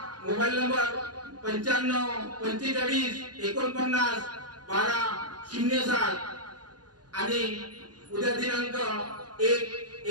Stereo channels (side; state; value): left; late; 0.69 ms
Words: मोबाईल नंबर 95 45 49 1207 आणि उद्या दिनांक